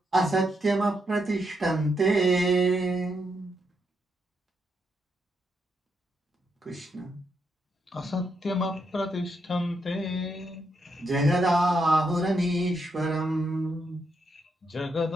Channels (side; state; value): both; normal; correlation 0.80